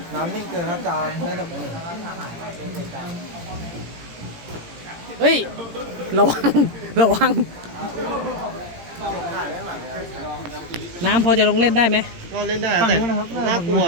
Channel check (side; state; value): left; late; 17 ms